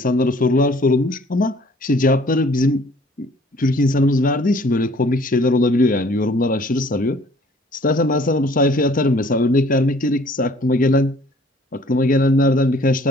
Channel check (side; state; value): both; normal; correlation 0.56